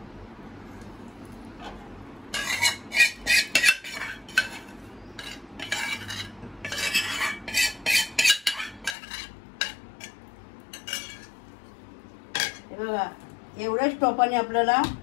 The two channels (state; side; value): drops out; right; at 9.0 s